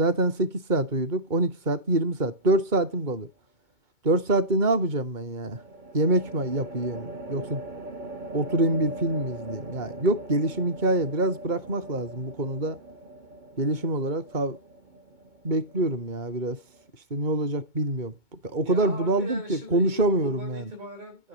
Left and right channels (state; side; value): late; left; 2.2 ms